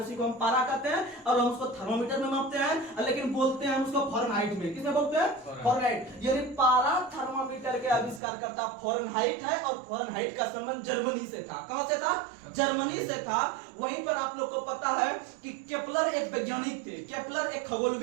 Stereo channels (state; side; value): drops out; left; at 8.2 s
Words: को हम पारा कहते हैं। और हम उसको थर्मोमीटर में मापते हैं, लेकिन बोलते हैं उसको फारेनहाइट में। किसमें बोलते हैं, फारेनहाइट। यानी पारा थर्मोमीटर के आविष्कार करता फारेनहाइट है, और फारेनहाइट का संबंध जर्मनी से था। कहां से था, जर्मनी से था। वहीं पर आप लोग को पता है कि केपलर एक वैज्ञानिक थे, केपलर एक